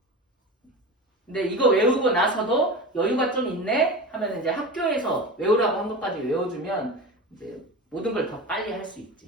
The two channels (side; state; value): both; normal; correlation 0.29